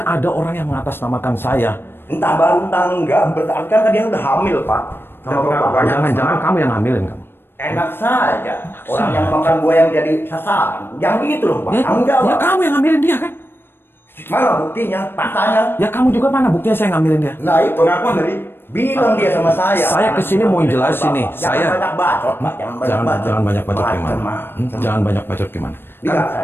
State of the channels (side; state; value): right; late; 0.10 ms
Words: ada orang yang mengatasnamakan saya. entah baru entah enggak, berarti kan dia udah hamil Pak. Jangan kamu yang ngambilin kamu. Enak saja. Orang yang makan buah yang jadi sasaran. Yang gitu loh Pak. Tanggung Ya jawab. kamu yang ngambilin dia kan? Mana buktinya? Faktanya. Ya kamu juga mana buktinya saya ngambilin dia? Nah itu pengakuan dari bilang dia sama saya. Saya kesini mau jelasin nih. Jangan Saya banyak bacot Pak. jangan banyak bacot gimana? Jangan banyak bacot gimana? Lihat